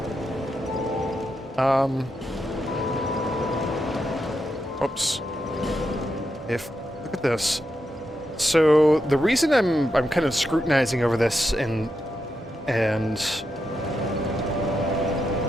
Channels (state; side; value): normal; both; correlation 0.85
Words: Oops. Look at this. So the reason I'm kind of scrutinizing over this and